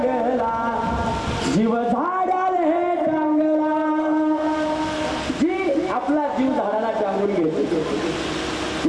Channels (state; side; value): identical; both; correlation 1.00